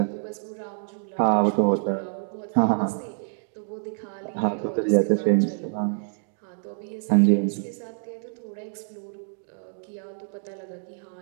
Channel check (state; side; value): silent; left; digital silence